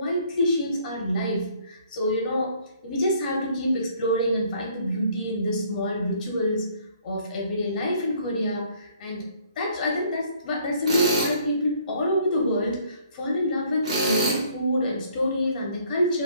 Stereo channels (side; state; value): both; inverted; correlation -0.61